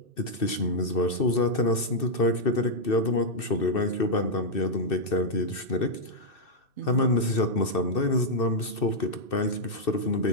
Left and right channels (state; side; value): late; right; 2.6 ms